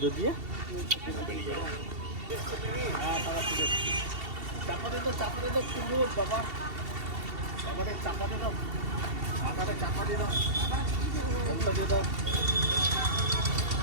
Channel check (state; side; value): late; left; 2.7 ms